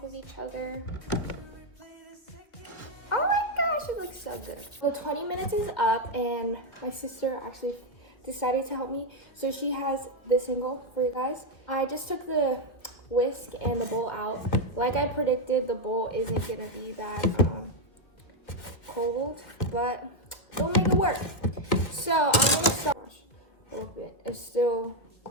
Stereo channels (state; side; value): late; right; 1.9 ms